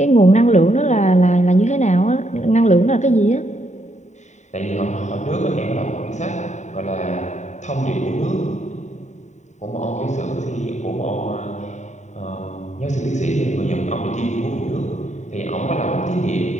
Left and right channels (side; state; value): right; late; 0.34 ms